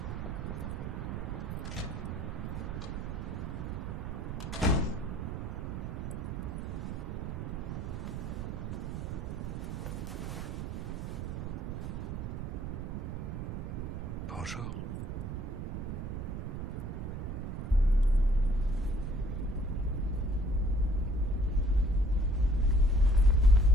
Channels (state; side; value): noise; right; rumble, 4 dB below the sound